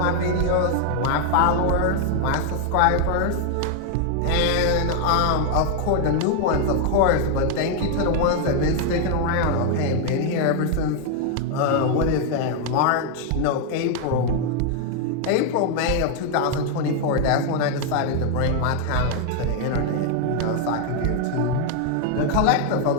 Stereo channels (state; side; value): different; both; correlation 0.00